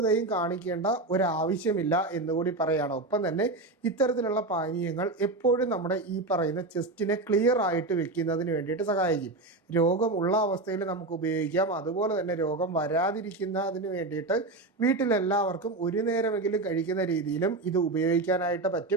കാണിക്കേണ്ട ഒരാവശ്യമില്ല എന്നുകൂടി പറയുകയാണ്. ഒപ്പം തന്നെ ഇത്തരത്തിലുള്ള പാനീയങ്ങൾ എപ്പോഴും നമ്മുടെ ഈ പറയുന്ന ചെസ്റ്റിനെ ക്ലിയർ ആയിട്ട് വെക്കുന്നതിന് വേണ്ടിയിട്ട് സഹായിക്കും. രോഗമുള്ള അവസ്ഥയിൽ നമുക്ക് ഉപയോഗിക്കാം. അതുപോലെ തന്നെ രോഗം വരാതിരിക്കുന്നതിന് വേണ്ടിയിട്ട് വീട്ടിലെല്ലാവർക്കും ഒരു നേരമെങ്കിലും കഴിക്കുന്ന രീതിയിലും ഇത് ഉപയോഗിക്കാനായിട്ട്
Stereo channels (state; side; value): quieter; left; 3.0 dB